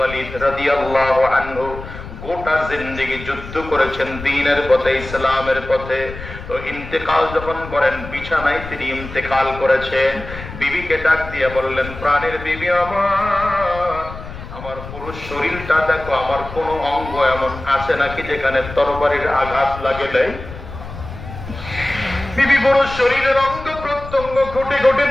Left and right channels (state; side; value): noise; left; rumble, 12 dB below the sound